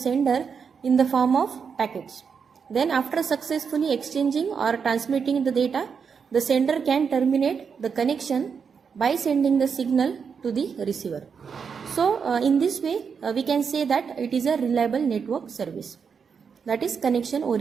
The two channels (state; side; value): quieter; left; 6.2 dB